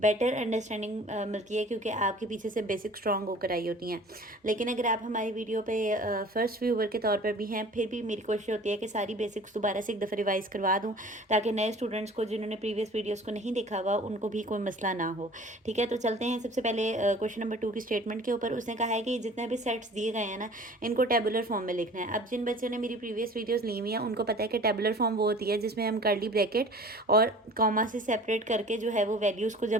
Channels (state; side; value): normal; both; correlation 0.46